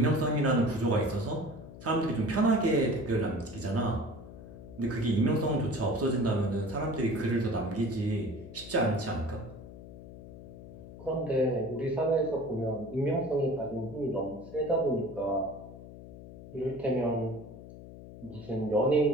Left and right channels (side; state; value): left; noise; hum, 15 dB below the sound